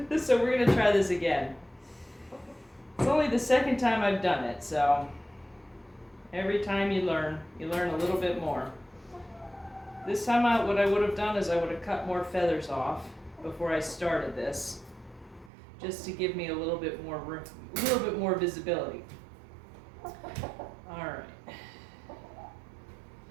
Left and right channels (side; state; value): left; drops out; at 15.5 s